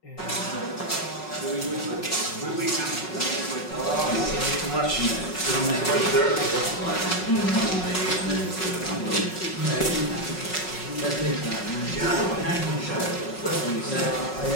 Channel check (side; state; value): right; late; 5.4 ms